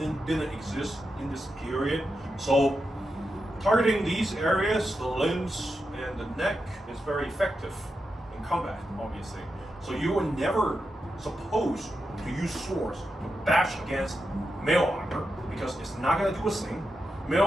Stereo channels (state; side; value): normal; both; correlation 0.87